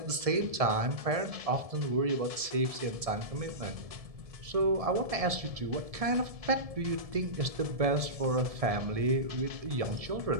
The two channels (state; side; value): late; left; 1.7 ms